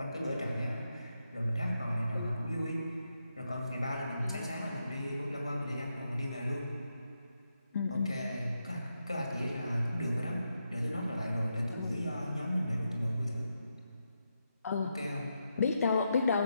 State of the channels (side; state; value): both; inverted; correlation -0.85